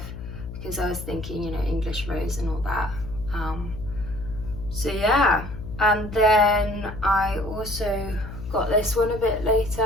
because I was thinking, you know, English Rose and all that, so yeah. And then I also got this one a bit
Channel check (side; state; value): left; noise; hum, 10 dB below the sound